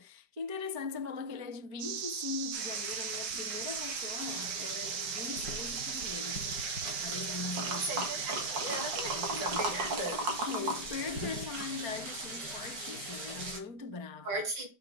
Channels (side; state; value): left; late; 4.9 ms